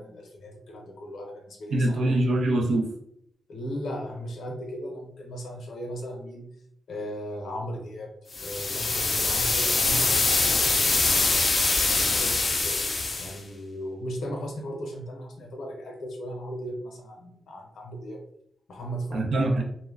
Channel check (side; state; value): both; normal; correlation 0.88